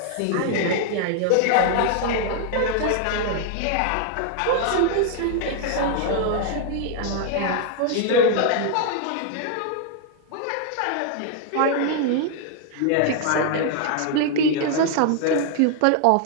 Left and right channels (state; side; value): different; both; correlation 0.00